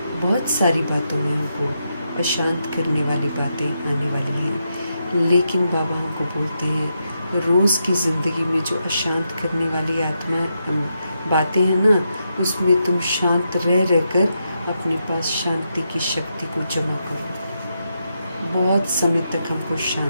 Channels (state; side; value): inverted; both; correlation -0.84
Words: बहुत सारी बातों में हमको अशांत करने वाली बातें आने वाली हैं। लेकिन बाबा हमको बोलते हैं रोज़ की ज़िंदगी में जो अशांत करने वाली आत्मा बातें हैं ना, उसमें तुम शांत रहकर अपने पास शांति की शक्ति को जमा करो। बहुत समय तक हमको